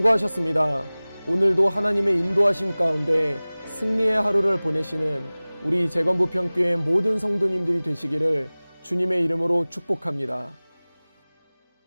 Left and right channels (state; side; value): inverted; both; correlation -0.99